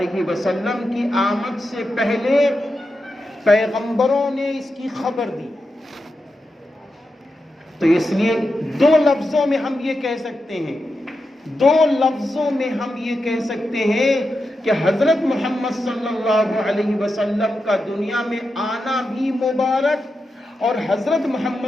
وسلم کی آمد سے پہلے پیغمبروں نے اس کی خبر دی، تو اس لیے 2 لفظوں میں ہم یہ کہہ سکتے ہیں، 2 لفظوں میں ہم یہ کہہ سکتے ہیں کہ حضرت محمد صلی اللہ علیہ وسلم کا دنیا میں آنا بھی مبارک، اور حضرت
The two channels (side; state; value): both; normal; correlation 0.88